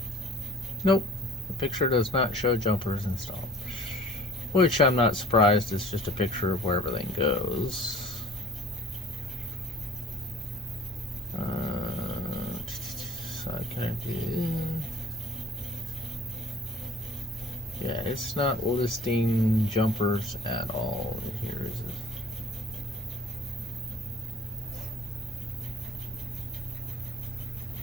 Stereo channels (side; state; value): both; normal; correlation 0.51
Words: Nope, the picture does not show jumpers installed. Which I'm not surprised, it's just a picture of where everything goes. Yeah, it's not listing jumpers at all. Here is it.